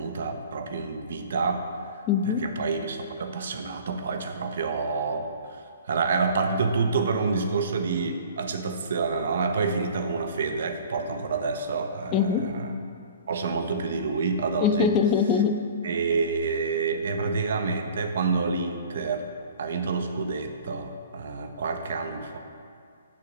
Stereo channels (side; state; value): both; inverted; correlation -0.45